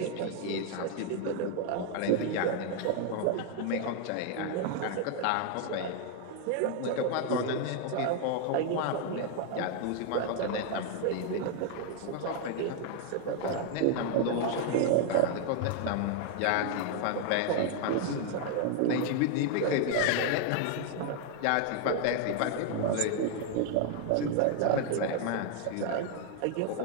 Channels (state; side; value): different; both; correlation 0.00